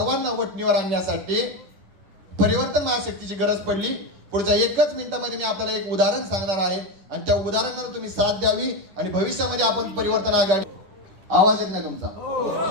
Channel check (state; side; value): late; left; 10 ms